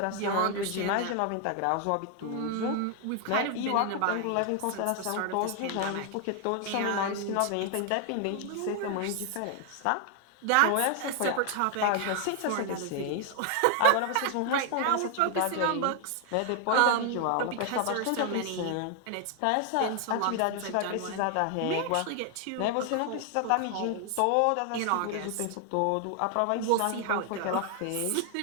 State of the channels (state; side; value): different; both; correlation 0.00